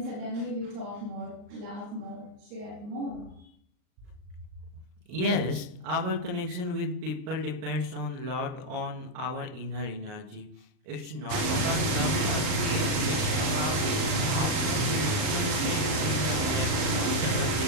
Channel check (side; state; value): left; late; 39 ms